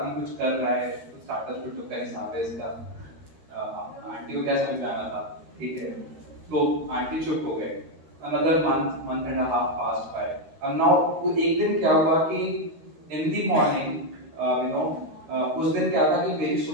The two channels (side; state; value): left; late; 13 ms